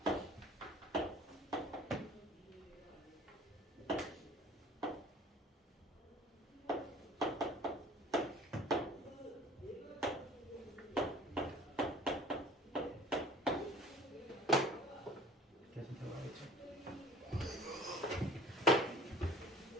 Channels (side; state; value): both; normal; correlation 0.45